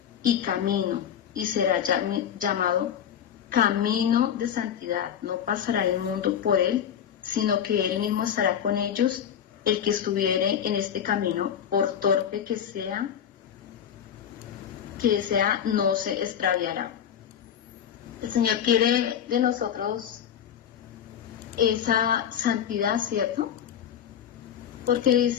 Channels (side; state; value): right; quieter; 9.0 dB